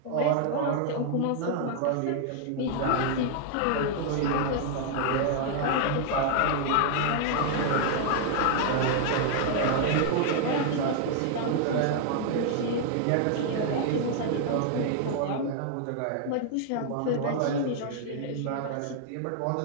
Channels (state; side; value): different; both; correlation 0.00